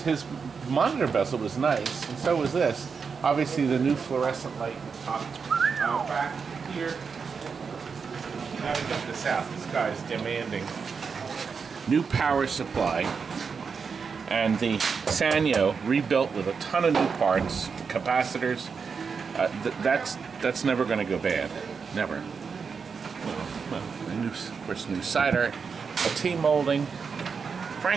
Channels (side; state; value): left; quieter; 5.6 dB